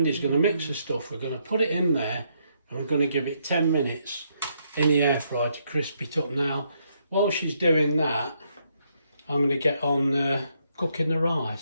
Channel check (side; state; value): both; inverted; correlation -0.75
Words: going to mix the stuff, we're going to put it in there and we're going to give it 10 minutes in the air fryer to crisp it up. Now, while she's doing that, I'm going to get on cooking the